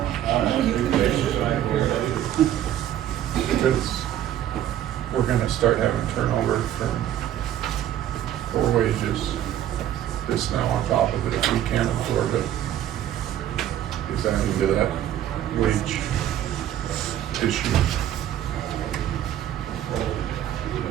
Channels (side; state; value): left; quieter; 11.6 dB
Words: Because we're gonna start having turnover for wages. This now on top of it, if we can't absorb it, is that into that wage issue?